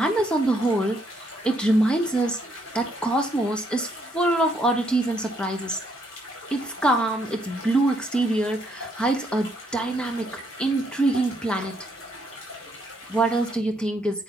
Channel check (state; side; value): normal; both; correlation 0.72